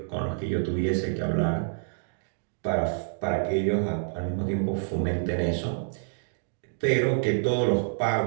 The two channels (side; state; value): left; silent; digital silence